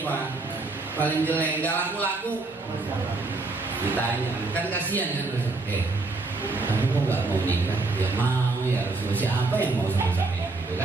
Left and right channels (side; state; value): left; quieter; 3.5 dB